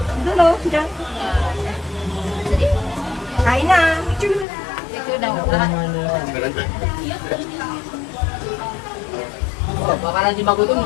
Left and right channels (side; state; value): right; drops out; at 4.5 s